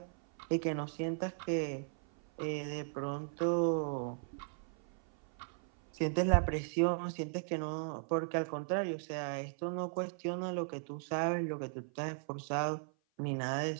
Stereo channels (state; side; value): silent; left; 53 dB below the other